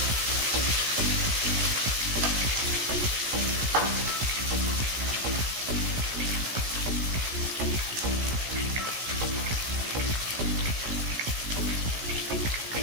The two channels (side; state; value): left; late; 17 ms